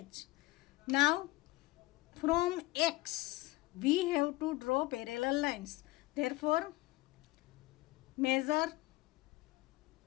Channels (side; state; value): right; quieter; 20.3 dB